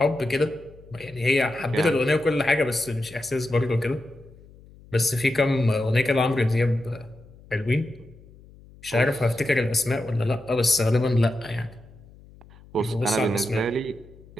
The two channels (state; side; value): noise; left; hum, 23 dB below the sound